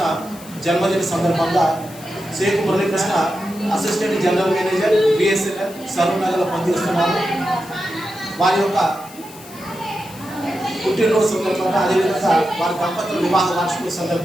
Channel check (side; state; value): left; noise; hiss, 19 dB below the sound